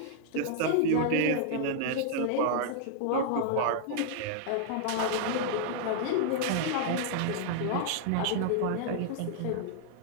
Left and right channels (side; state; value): both; different; correlation -0.01